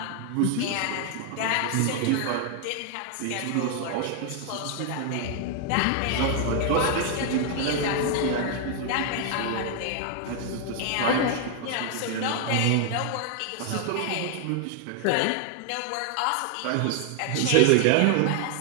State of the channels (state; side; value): different; both; correlation 0.00